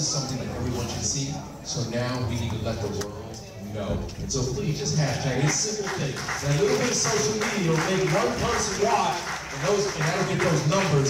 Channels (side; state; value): both; identical; correlation 1.00